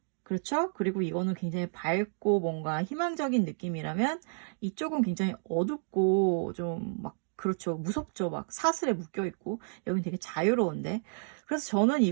그렇죠? 그리고 이거는 굉장히 밝고 뭔가 희망적인 느낌이라면 이쪽은 굉장히 어둡고 좀 막 그렇죠. 무섭죠. 막 사슬에 묶여 있고 여긴 되게 자유로운데 그래서 저는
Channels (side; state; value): left; silent; digital silence